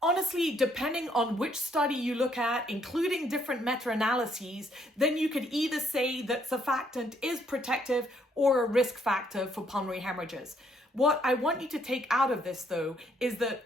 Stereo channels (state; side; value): normal; both; correlation 0.70